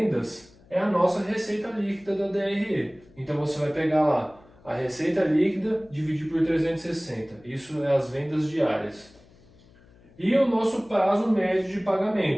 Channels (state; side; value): noise; left; hum, 27 dB below the sound